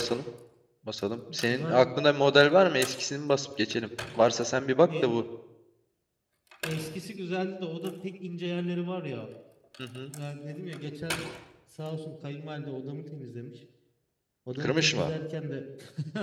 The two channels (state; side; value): identical; both; correlation 1.00